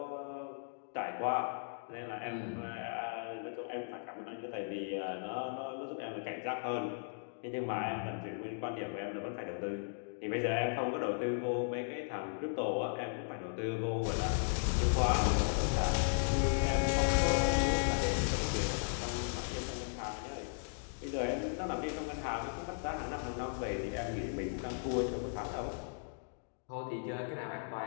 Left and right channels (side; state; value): right; silent; digital silence